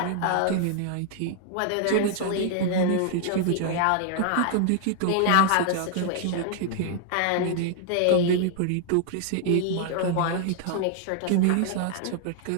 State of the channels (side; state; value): both; different; correlation -0.01